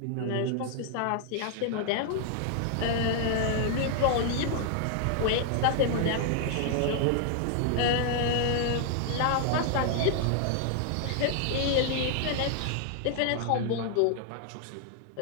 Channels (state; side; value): different; both; correlation 0.00